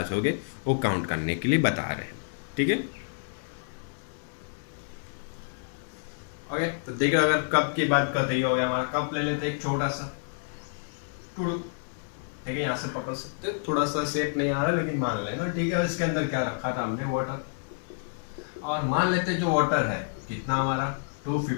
होंगे, वो काउंट करने के लिए बता रहे हैं। ठीक है, ओके, तो देखो अगर कप की बात करते ही हो गया हमारा। कप ले लेते हैं एक छोटा सा टुडू, ठीक है, यहाँ से पकड़ सकते हो, थोड़ा सा शेप नहीं आ रहा लेकिन मान लेना, ठीक है। इसके अंदर क्या रखा था हमने, वाटर, और मान लेते हैं जो वाटर है कितना हमारा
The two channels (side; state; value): right; silent; digital silence